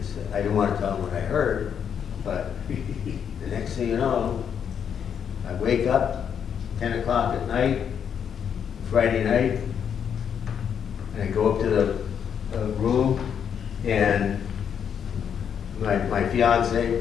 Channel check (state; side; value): quieter; right; 7.9 dB